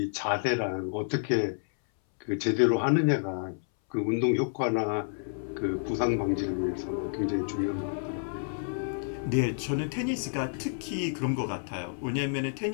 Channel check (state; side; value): silent; right; 58 dB below the other